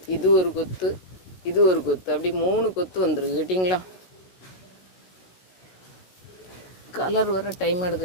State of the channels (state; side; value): late; right; 16 ms